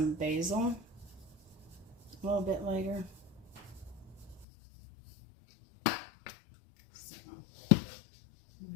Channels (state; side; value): drops out; right; at 4.5 s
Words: basil a little bit later. So,